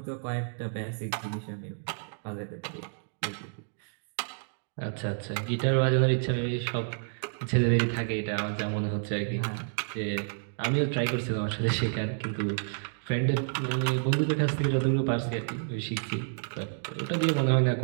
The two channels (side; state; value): left; silent; digital silence